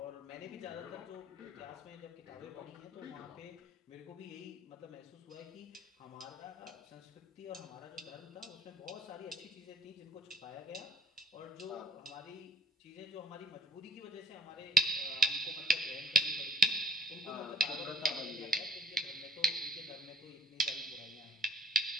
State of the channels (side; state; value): both; normal; correlation 0.48